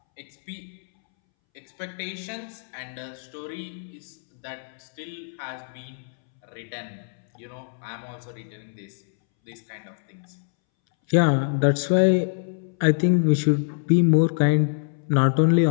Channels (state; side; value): silent; right; 62 dB below the other